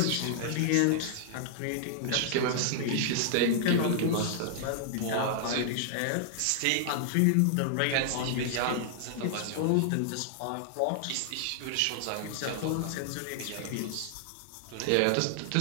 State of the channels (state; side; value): different; both; correlation -0.01